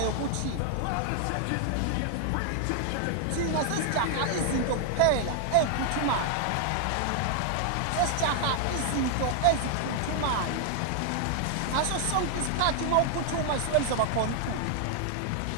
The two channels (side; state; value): both; different; correlation 0.00